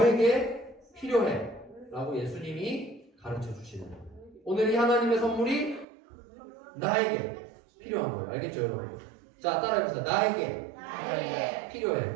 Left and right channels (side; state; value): left; drops out; at 5.9 s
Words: 필요해 라고 예수님이 가르쳐 주시는 거예요. 오늘 이 하나님의 선물이 나에게 필요한 거예요. 알겠죠 여러분? 자 따라해보세요. 나에게